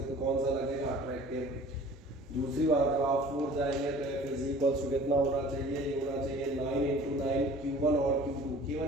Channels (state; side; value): normal; both; correlation 0.46